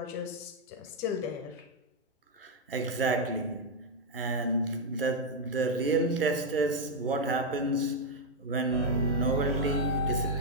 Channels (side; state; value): both; normal; correlation 0.01